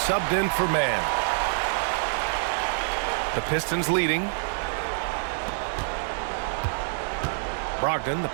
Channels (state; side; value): silent; left; digital silence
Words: in for man. The Pistons leading. Brogdon, the